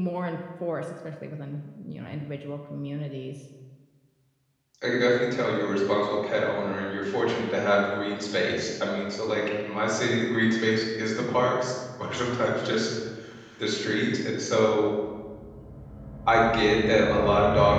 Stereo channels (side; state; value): both; identical; correlation 1.00